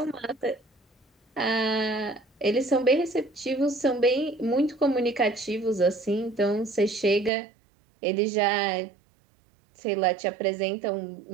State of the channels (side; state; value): left; drops out; at 7.3 s